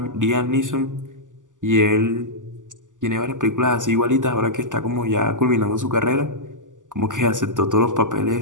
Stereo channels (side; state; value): left; late; 0.87 ms